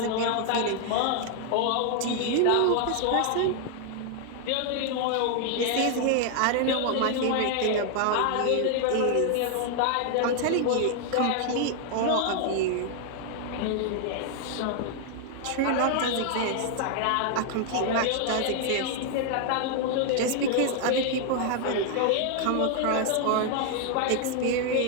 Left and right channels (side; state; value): both; different; correlation 0.00